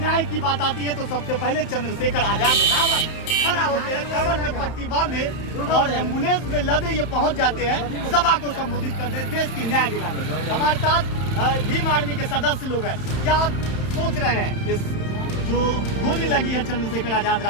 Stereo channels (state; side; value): late; right; 31 ms